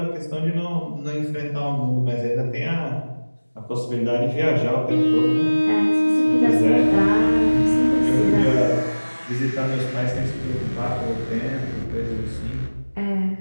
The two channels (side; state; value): both; inverted; correlation -1.00